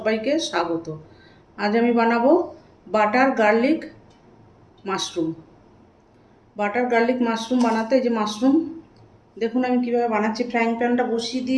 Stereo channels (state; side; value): identical; both; correlation 1.00